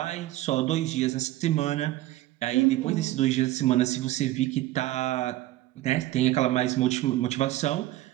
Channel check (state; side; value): quieter; left; 16.0 dB